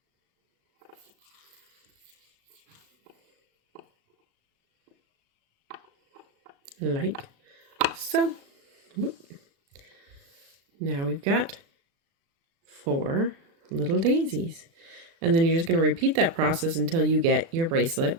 Like so. Whoop. Now we've got 4 little daisies. And then you're just going to repeat that process until you get your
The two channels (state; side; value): late; left; 36 ms